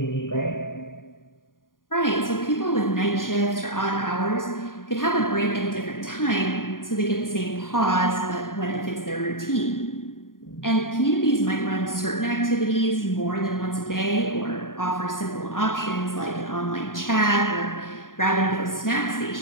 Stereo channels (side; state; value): right; late; 0.90 ms